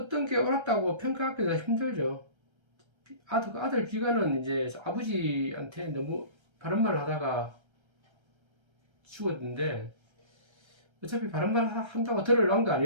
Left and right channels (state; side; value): late; left; 1.3 ms